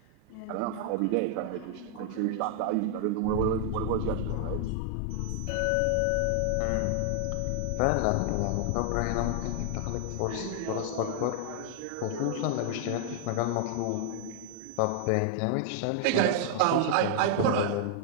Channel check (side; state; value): both; different; correlation 0.00